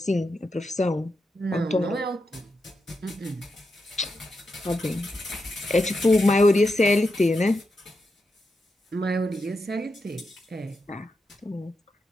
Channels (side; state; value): both; normal; correlation 0.86